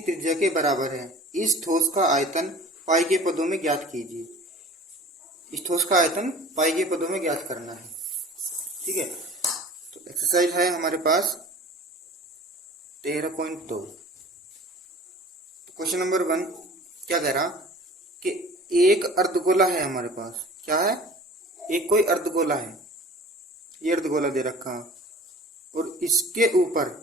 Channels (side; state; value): both; normal; correlation 0.44